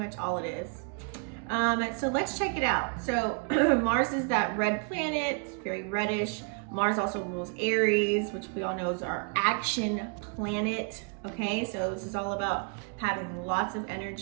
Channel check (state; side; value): quieter; left; 37.9 dB